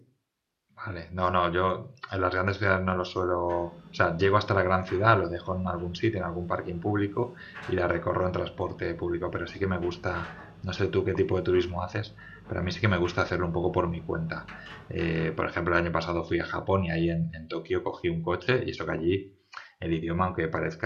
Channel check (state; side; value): identical; both; correlation 1.00